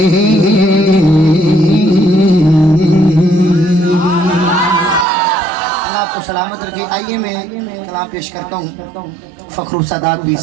اللہ آپ کو سلامت رکھے. آئیے میں کلام کلام پیش کرتا ہوں فخر السادات بھی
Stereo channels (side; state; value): left; drops out; at 5.1 s